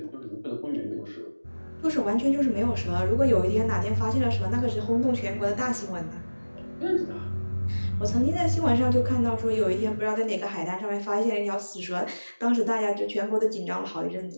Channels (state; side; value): inverted; both; correlation -1.00